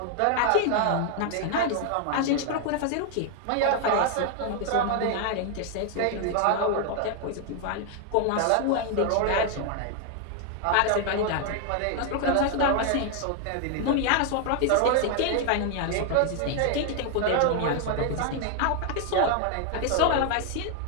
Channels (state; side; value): different; both; correlation 0.00